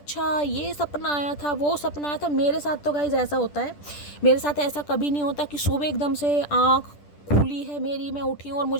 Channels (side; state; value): right; late; 10 ms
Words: ये सपना आया था, वो सपना आया था। मेरे साथ तो गाइस ऐसा होता है, मेरे साथ ऐसा कभी नहीं होता कि सुबह एकदम से आँख खुली है मेरी, मैं उठी हूँ और